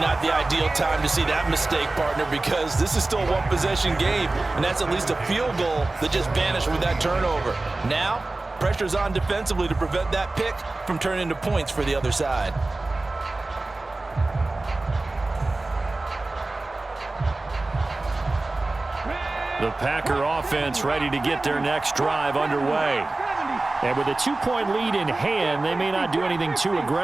the ideal time to see that mistake, partner, because this is still a one-possession game, and that's at least a field goal that just vanished with that turnover. Now, pressure's on defensively to prevent that pick from turning into points for the other side. The Packer offense ready to get their next drive underway. And with a 2-point lead in hand, they may not do anything too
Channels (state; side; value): quieter; left; 3.1 dB